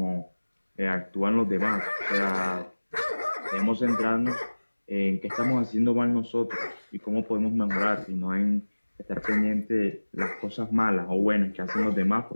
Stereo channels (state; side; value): inverted; both; correlation -1.00